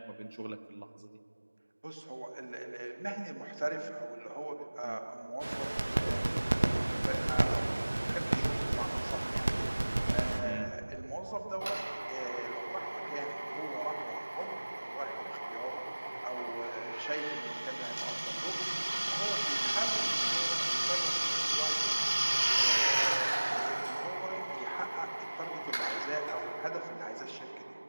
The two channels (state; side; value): inverted; both; correlation -1.00